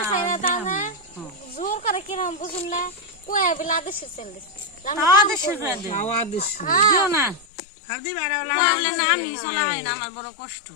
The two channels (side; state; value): right; drops out; at 7.5 s